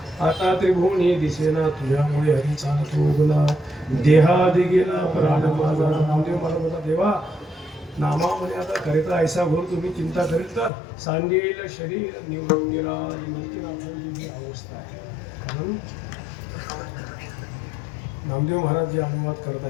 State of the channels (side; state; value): right; drops out; at 10.7 s